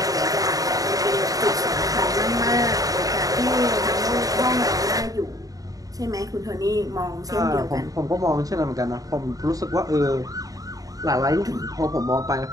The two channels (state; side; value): late; left; 0.17 ms